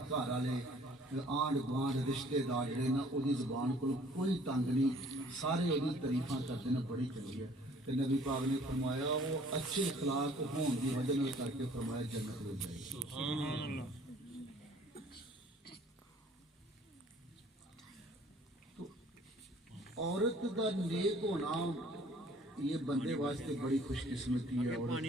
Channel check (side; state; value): both; normal; correlation 0.55